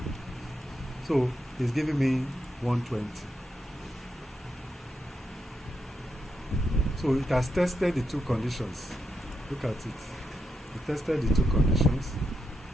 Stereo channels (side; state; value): both; normal; correlation 0.83